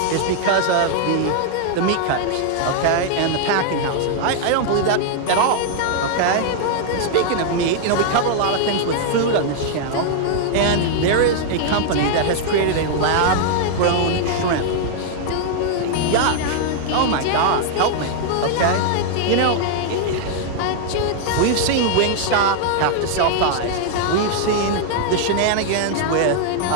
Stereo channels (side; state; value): both; different; correlation -0.01